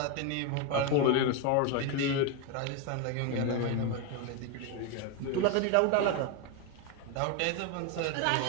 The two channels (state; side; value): different; both; correlation 0.02